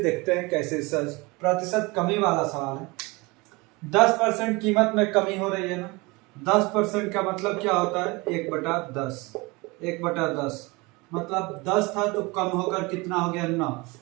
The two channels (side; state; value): left; quieter; 24.9 dB